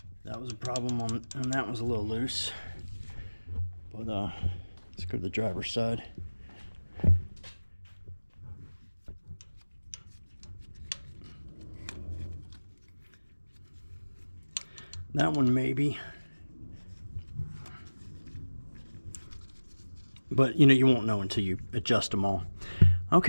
that was a problem and that was a little loose. But let's go to the driver's side. That one maybe. But you know, you won't know until you adjust them all.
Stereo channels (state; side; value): inverted; both; correlation -1.00